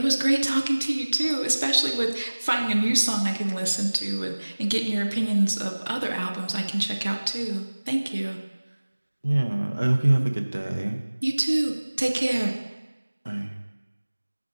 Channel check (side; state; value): both; inverted; correlation -1.00